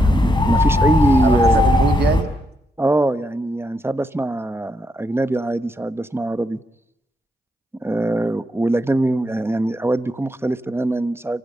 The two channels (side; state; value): both; normal; correlation 0.80